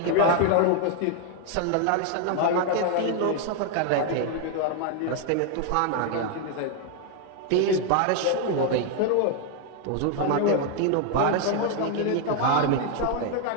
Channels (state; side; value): different; both; correlation 0.00